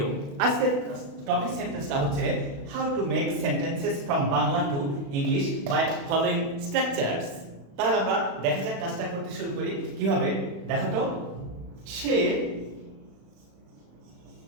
আজকের টপিক সেন্টেন্সটা হচ্ছে how to make sentences from Bangla to English by following structures. তাহলে আমরা দেখা যাক কাজটা করতে শুরু করি কিভাবে। দেখো তো, সে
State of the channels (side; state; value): left; late; 36 ms